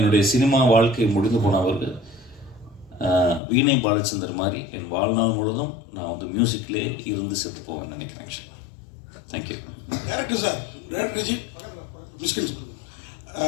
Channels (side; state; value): right; drops out; at 3.4 s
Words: சினிமா வாழ்க்கை முடிந்து போனவர்கள் வீணை பாலச்சந்தர் மாதிரி என் வாழ்நாள் முழுதும் நான் வந்து மியூசிக்லேயே இருந்து செத்து போவேன்னு நினைக்கிறேன். ஆக்சுவலாக தேங்க்யூ. டேரக்டர் சார், டேரக்டர் மிஸ்கின்,